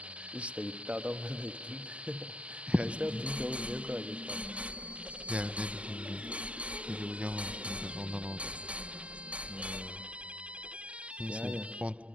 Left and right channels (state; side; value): late; left; 0.061 ms